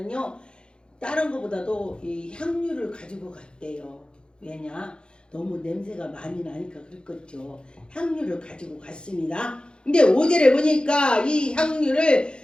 다른 것보다도 이 향유를 가지고 갔대요. 왜냐? 너무 냄새가 많이 나니까 그랬겠죠. 향유를 가지고 갔습니다. 근데 5절에 보니까 이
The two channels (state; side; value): late; right; 0.051 ms